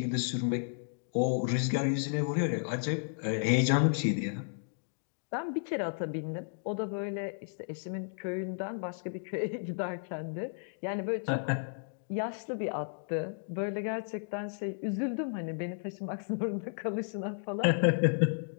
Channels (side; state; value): right; silent; digital silence